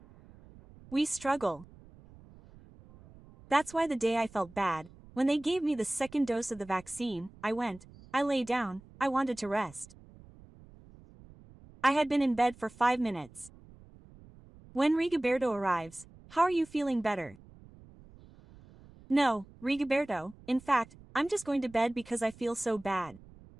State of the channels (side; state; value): right; noise; rumble, 23 dB below the sound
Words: We struggle. That's why the day I felt bad, when they gave me the second dose of the vaccine, I lay down, I wanted to rest. I had been in bed for 5 minutes. When Rigoberto arrives, how are you feeling better? No, Rigoberto, in fact, I'm just going to bed because I feel so bad.